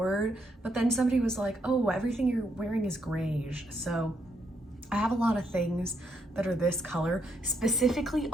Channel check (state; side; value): normal; both; correlation 0.76